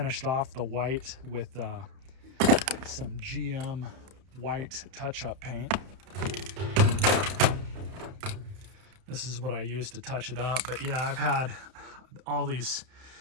off the white with some GM white touch-up paint. This is what I used to touch it up. But yeah, I've had all this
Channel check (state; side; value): late; left; 31 ms